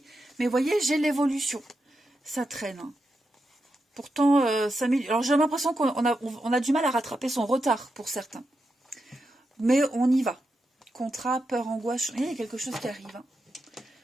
Mais vous voyez, j'ai l'évolution. Ça traîne. Hein. Pourtant, alors j'ai l'impression qu'on a du mal à rattraper son retard pour certains. Mais on y va. Contrat, peur, angoisse, il y a quelque chose qui arrive. Hein.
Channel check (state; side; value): normal; both; correlation 0.87